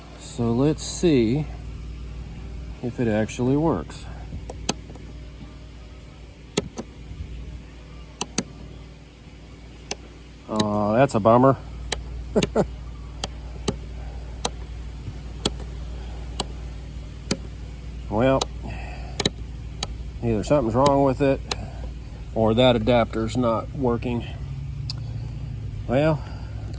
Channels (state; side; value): identical; both; correlation 1.00